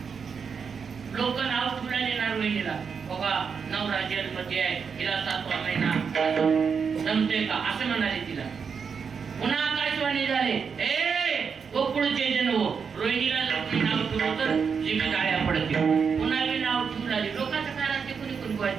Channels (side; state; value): left; quieter; 6.1 dB